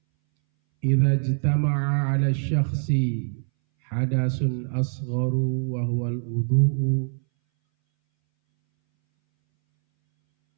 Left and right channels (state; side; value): silent; left; 61 dB below the other